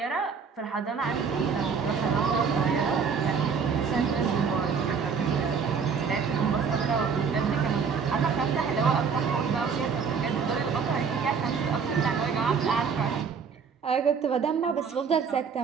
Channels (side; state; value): left; quieter; 6.0 dB